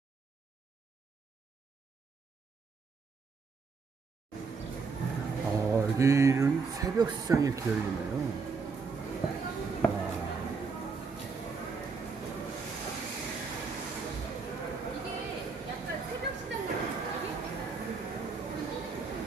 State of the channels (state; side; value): quieter; left; 4.9 dB